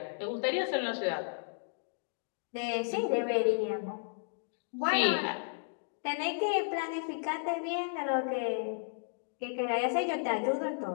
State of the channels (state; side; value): silent; right; digital silence